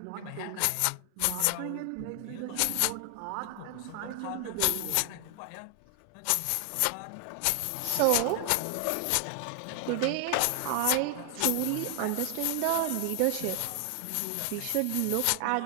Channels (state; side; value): different; both; correlation 0.00